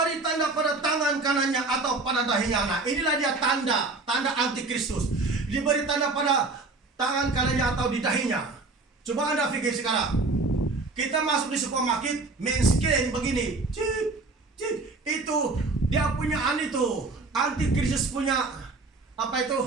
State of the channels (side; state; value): left; quieter; 3.6 dB